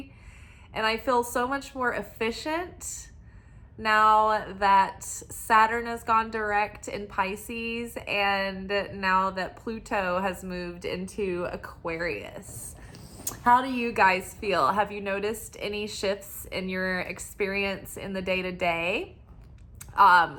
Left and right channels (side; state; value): both; identical; correlation 1.00